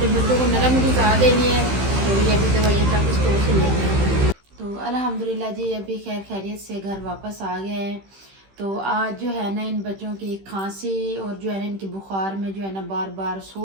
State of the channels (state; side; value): late; left; 15 ms